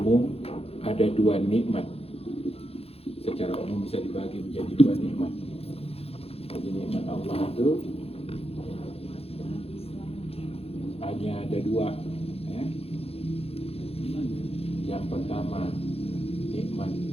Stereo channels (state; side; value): late; right; 0.29 ms